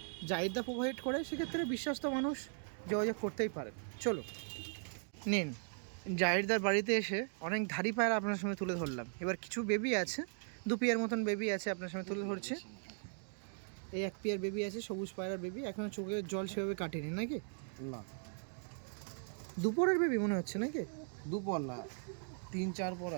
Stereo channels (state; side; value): silent; left; 52 dB below the other